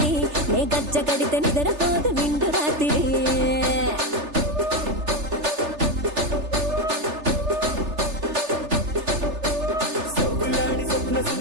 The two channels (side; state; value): left; late; 3.3 ms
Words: నే గజ్జ కడితే నిద్రపోదు నిండు రాత్రి